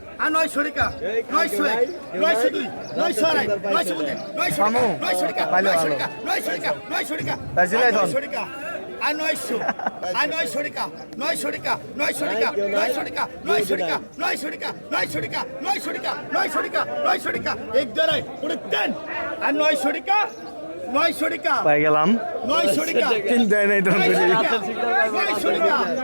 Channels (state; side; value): inverted; both; correlation -1.00